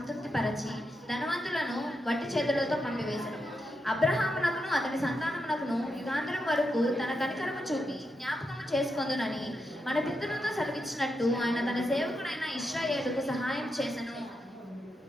ధనవంతులను వట్టి చేతులతో పంపివేశను. అబ్రహామునకును అతని సంతానమునకును యుగాంతరం వరకు తన కనికరము చూపి జ్ఞాపకము చేసుకొందునని మన పితరులతో సెలవిచ్చినట్టు ఆయన తన సేవకుడైన ఇశ్రాయేలుకు సహాయం చేసెను.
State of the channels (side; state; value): both; normal; correlation 0.85